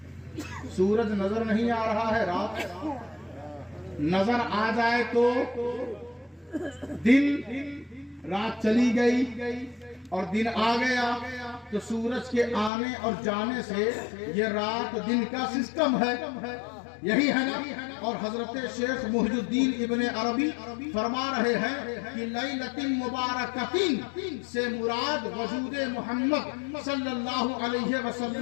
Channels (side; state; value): right; drops out; at 12.7 s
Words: سورج نظر نہیں آ رہا ہے, رات نظر آ جائے تو دن, رات چلی گئی اور دن آ گیا تو سورج کے آنے اور جانے سے یہ رات دن کا سسٹم ہے, یہی ہے نا. اور حضرت شیخ محی الدین ابن عربی فرما رہے ہیں کہ لیلۃ مبارکۃ سے مراد وجود محمد صلی اللہ علیہ